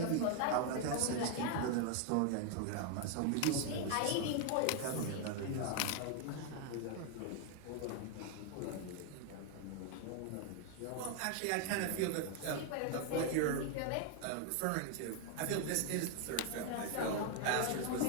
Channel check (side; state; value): both; different; correlation 0.00